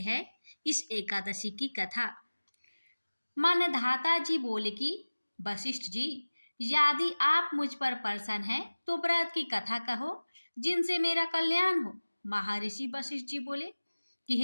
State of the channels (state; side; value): inverted; both; correlation -1.00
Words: है इस एकादशी की कथा। मान्यधाता जी बोले कि वशिष्ठ जी, यदि आप मुझ पर प्रसन्न हैं तो व्रत की कथा कहो जिनसे मेरा कल्याण हो। महर्षि वशिष्ठ जी बोले कि